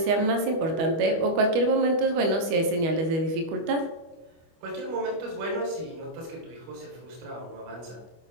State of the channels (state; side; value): late; left; 25 ms